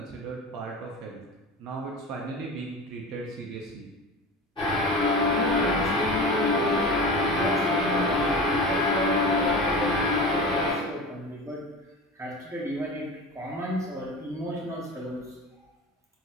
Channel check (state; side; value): normal; both; correlation 0.31